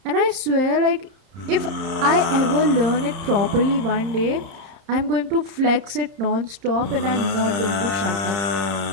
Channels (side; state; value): left; late; 31 ms